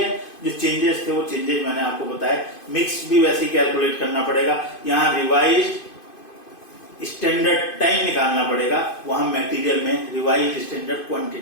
जो चेंजेस थे वो चेंजेस मैंने आपको बताया। मिक्स भी वैसे ही कैलकुलेट करना पड़ेगा, यहाँ रिवाइज्ड स्टैंडर्ड टाइम निकालना पड़ेगा, वहां मटेरियल में रिवाइज्ड स्टैंडर्ड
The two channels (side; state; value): right; late; 2.5 ms